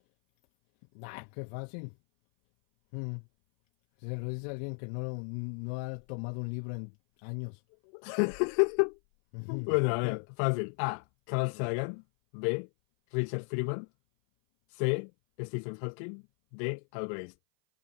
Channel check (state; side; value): silent; right; 55 dB below the other